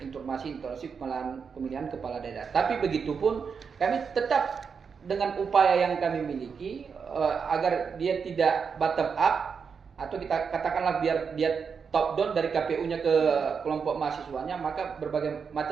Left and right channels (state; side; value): quieter; left; 6.0 dB